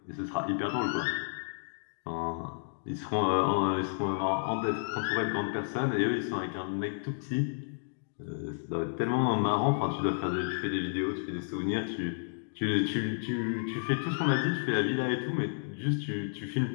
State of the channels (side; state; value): right; silent; digital silence